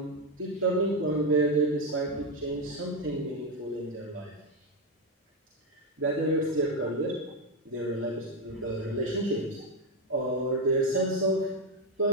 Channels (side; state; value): both; normal; correlation 0.07